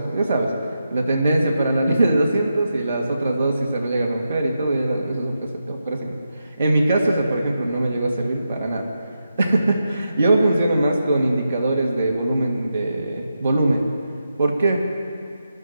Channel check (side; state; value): both; inverted; correlation -0.87